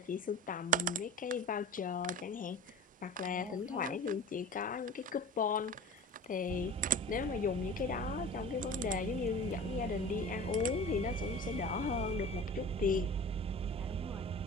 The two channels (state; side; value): normal; both; correlation 0.37